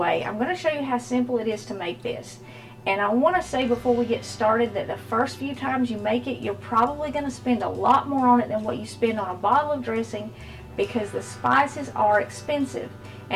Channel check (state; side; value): identical; both; correlation 1.00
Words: I'm going to show you how simple it is to make this. And I want to say before we get started that the first few times you make it, you're probably going to spend a lot more on it than what you spend on a bottle of dressing, because the spices are expensive.